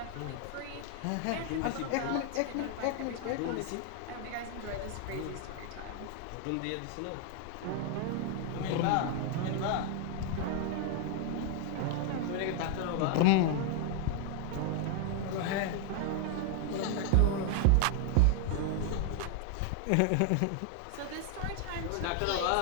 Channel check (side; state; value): both; different; correlation 0.00